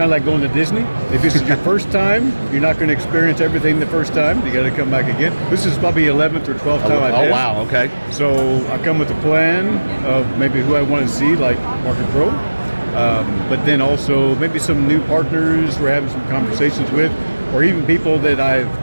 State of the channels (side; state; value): both; inverted; correlation -1.00